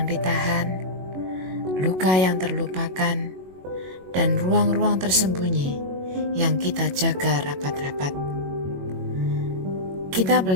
ditahan, luka yang terlupakan, dan ruang-ruang tersembunyi yang kita jaga rapat-rapat. Kita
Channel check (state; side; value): late; left; 22 ms